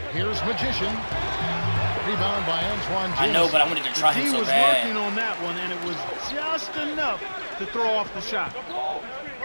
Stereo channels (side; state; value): both; inverted; correlation -1.00